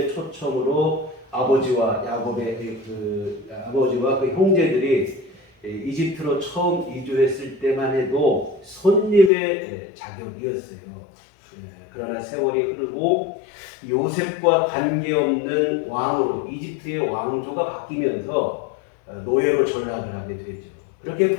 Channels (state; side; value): drops out; right; at 9.3 s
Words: 초청으로 아버지와 야곱의 아버지와 그 형제들이 이집트로 처음 이주했을 때만 해도 손님의 자격이었어요. 그러나 세월이 흐르고 요셉과 관계없는 왕으로 이집트의 왕조가 바뀌면서 노예로 전락을 하게 되죠. 그렇게